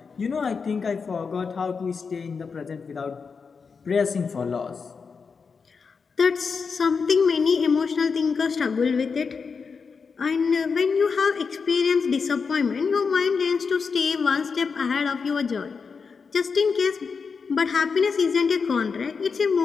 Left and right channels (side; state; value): right; quieter; 5.3 dB